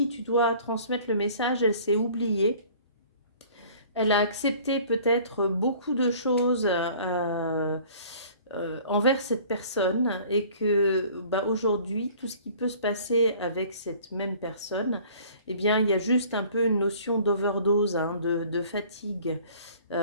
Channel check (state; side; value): inverted; both; correlation -0.50